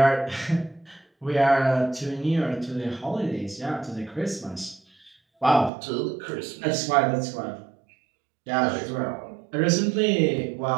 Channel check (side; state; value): left; drops out; at 5.7 s